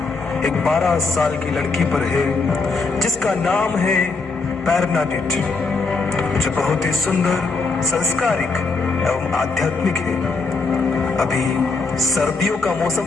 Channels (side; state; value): right; quieter; 4.1 dB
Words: एक 12 साल की लड़की पर है जिसका नाम है बर्नाडेट, जो बहुत ही सुंदर, संस्कारिक एवं आध्यात्मिक है। अभी सर्दियों का